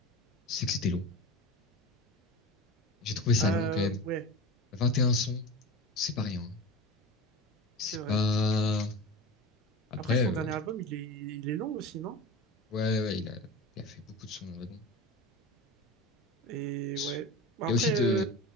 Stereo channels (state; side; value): normal; both; correlation 0.30